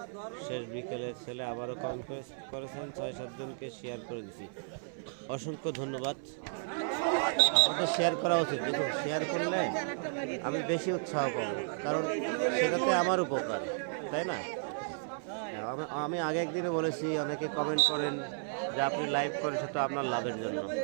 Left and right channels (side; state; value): left; silent; 56 dB below the other